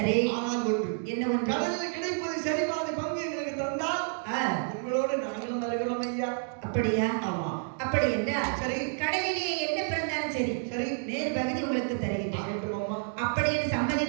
ஆனால் ஒன்று, என்ன ஒன்று? கடலில் கிடைப்பது சரி பாதி பங்கு எங்களுக்கு தந்தால் உங்களோட நாங்களும் வருகிறோம் ஐயா. அப்படியா? ஆமா. அப்படி என்றால் சரி, கடலிலே என்ன பிறந்தாலும் சரி, சரி, நேர் பகுதி உங்களுக்கு தருகிறேன். அப்படி என்று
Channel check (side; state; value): left; silent; 58 dB below the other